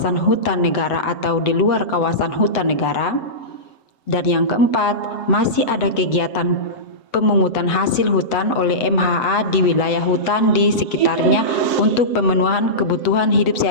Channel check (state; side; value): late; right; 7.9 ms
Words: hutan negara atau di luar kawasan hutan negara. Dan yang keempat, masih ada kegiatan pemungutan hasil hutan oleh MHA di wilayah hutan di sekitarnya untuk pemenuhan kebutuhan hidup